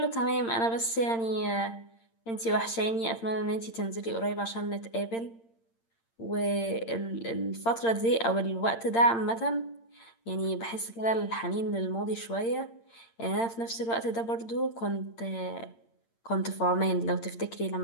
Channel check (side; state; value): right; late; 8.8 ms